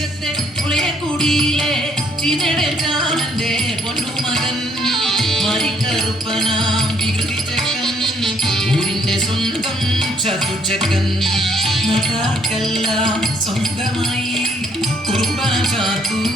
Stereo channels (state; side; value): normal; both; correlation 0.66